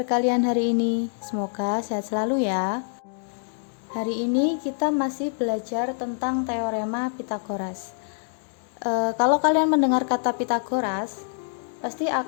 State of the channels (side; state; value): right; silent; digital silence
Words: kalian hari ini? Semoga sehat selalu ya. Hari ini kita masih belajar tentang teorema Pitagoras. Kalau kalian mendengar kata Pitagoras, pasti